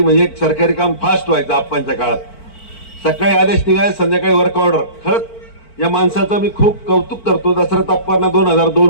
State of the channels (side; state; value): right; late; 4.5 ms